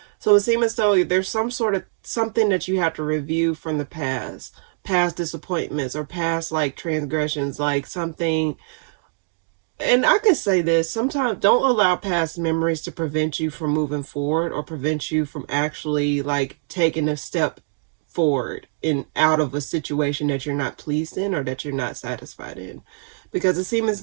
So it seems as though there's some sort of something that you have to review from the past disappointments, or past like transgressions, like something and I can say this, sometimes don't allow past memories to prevent you from moving forward or prevent you from actually like taking a step forward in out of a situation that you're not pleased in or that you're not satisfied in. Because it seems as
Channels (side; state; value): left; silent; digital silence